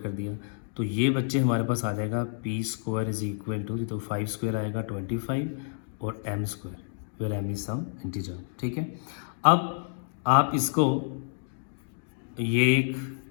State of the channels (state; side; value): silent; right; digital silence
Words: दिया, तो ये बच्चे हमारे पास आ जाएगा p square is equal to, तो 5 स्क्वायर आएगा 25 और m square, where m is some integer. ठीक है, अब आप इसको ये